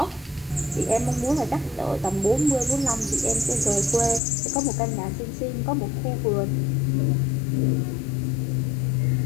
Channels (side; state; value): right; drops out; at 4.2 s